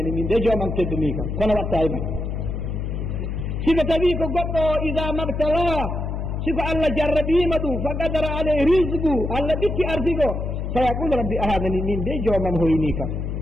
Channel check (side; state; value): left; noise; hum, 3 dB below the sound